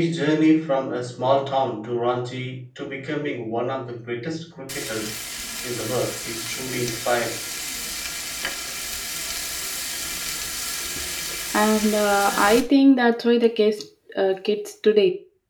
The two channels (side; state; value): both; identical; correlation 1.00